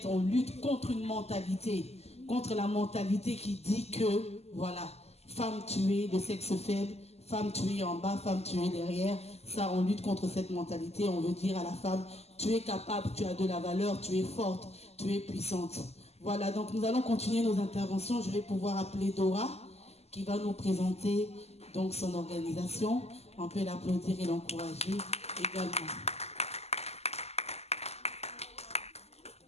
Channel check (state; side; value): late; right; 0.30 ms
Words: on lutte contre une mentalité. Contre la mentalité qui dit que, voilà, femme tuée de sexe faible, femme tuée en bas, femme tuée derrière. Ça, on lutte contre cette mentalité. On veut dire à la femme, tu es capable, tu as de la valeur, tu es forte, tu es puissante. Voilà, donc nous allons continuer nos interventions. Je vais pouvoir appeler Dora, qui va nous présenter donc son organisation. On peut l'applaudir et l'encourager également.